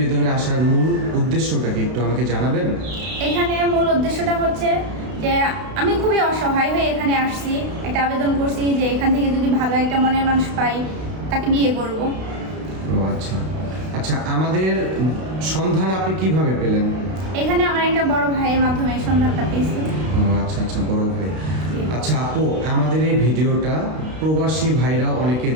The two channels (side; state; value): left; late; 32 ms